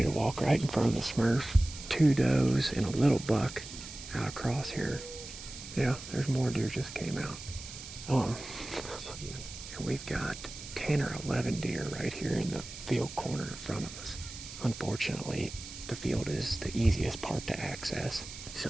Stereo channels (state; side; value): noise; right; hiss, 12 dB below the sound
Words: to walk right in front of the Smurf, 2 does, and a little buck out across here. Yeah, there's more deer just came out. And we've got 10 or 11 deer right here in the field corner in front of us. Unfortunately, the field is the easiest part to access,